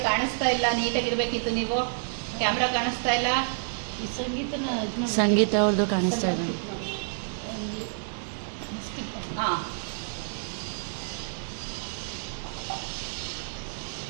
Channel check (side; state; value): left; silent; digital silence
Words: ಕಾಣಿಸ್ತಾ ಇಲ್ಲ, ನೀಟಾಗಿರ್ಬೇಕಿತ್ತು. ನೀವು ಕ್ಯಾಮ್ರಾ ಕಾಣಿಸ್ತಾ ಇಲ್ಲ. ಸಂಗೀತ ಅವ್ರದ್ದು ಕಾಣಿಸ್ತಾ ಇದೆ. ಹಾ,